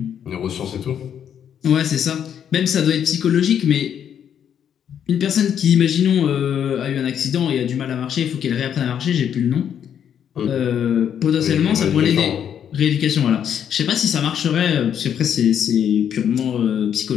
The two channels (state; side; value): quieter; right; 8.9 dB